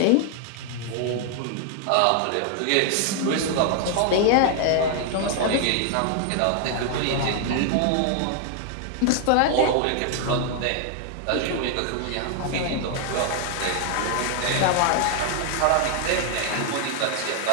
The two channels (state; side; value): different; both; correlation 0.00